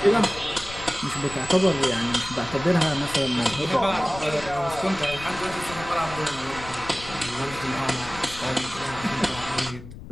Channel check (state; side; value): noise; left; rumble, 14 dB below the sound